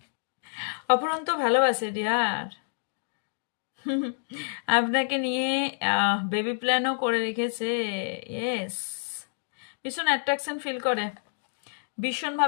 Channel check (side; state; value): right; silent; digital silence